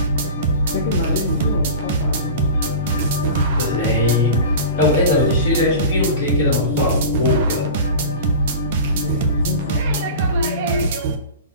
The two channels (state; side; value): inverted; both; correlation -0.33